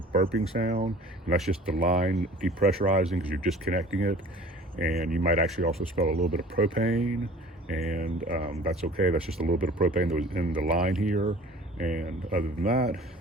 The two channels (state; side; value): normal; both; correlation 0.47